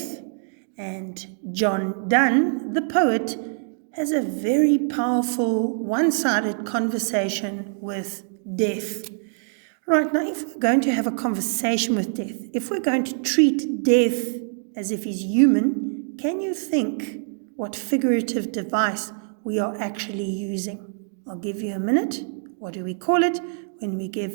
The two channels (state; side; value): silent; left; digital silence